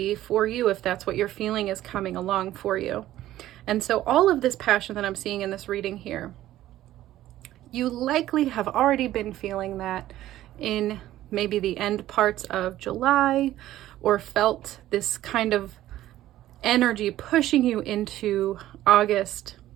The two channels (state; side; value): quieter; left; 14.1 dB